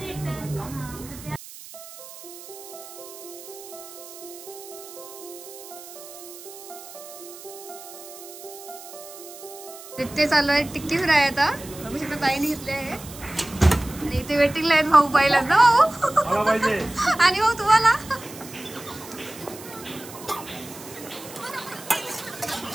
इथे चालू आहे टिक्की फ्राय. आता बघू शकता ताईने घेतले आहे. आणि इथे वेटिंगला आहेत भाऊ. पाहिलाच ना भाऊ. आणि भाऊ तुम्हाला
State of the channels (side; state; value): right; noise; hiss, 15 dB below the sound